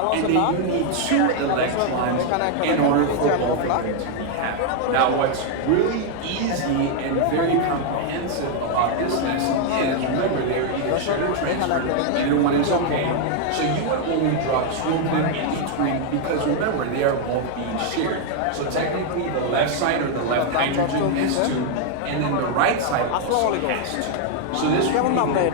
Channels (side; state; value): both; different; correlation 0.00